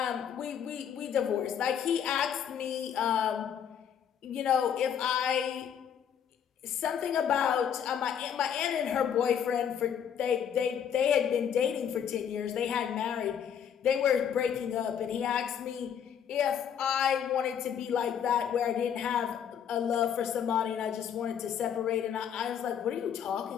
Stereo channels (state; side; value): quieter; right; 8.4 dB